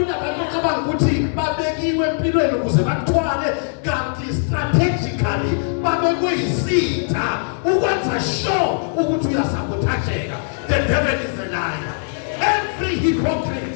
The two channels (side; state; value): right; silent; 66 dB below the other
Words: ocabanga ukuthi babekiwe empilweni ukuze bakuthwale kanti strategically babekwe isitha ukwenza sure ukuthi uyasabothajeka. The devil is a liar. Every hypocrite,